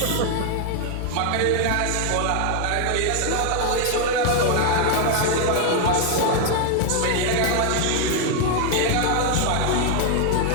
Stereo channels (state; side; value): different; both; correlation 0.00